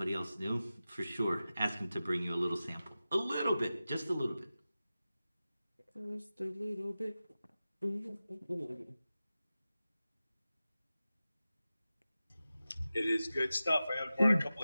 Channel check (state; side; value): inverted; both; correlation -0.94